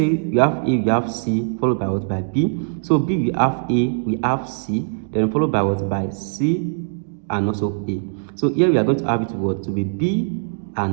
we have A, we have C, followed by what? By B. So B we have A, we have C, then followed by what? By C and also A. So here we are going to have it what? To be B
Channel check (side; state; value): left; silent; digital silence